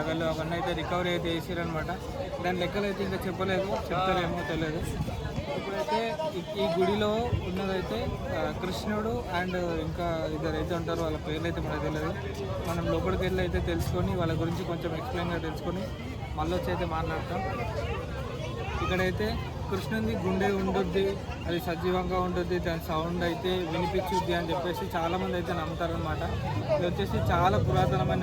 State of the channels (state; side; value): identical; both; correlation 1.00